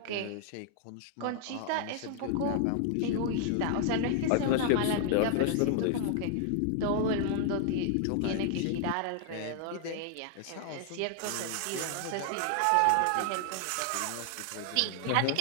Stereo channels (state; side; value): different; both; correlation 0.00